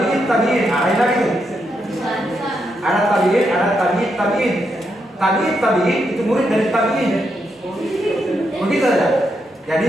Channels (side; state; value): both; normal; correlation 0.81